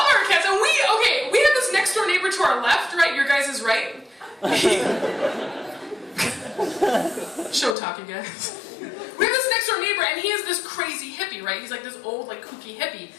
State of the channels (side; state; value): right; drops out; at 7.8 s